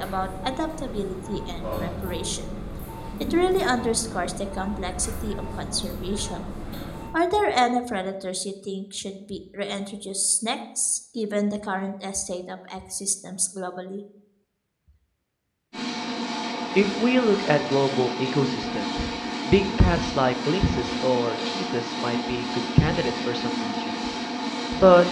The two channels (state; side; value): identical; both; correlation 1.00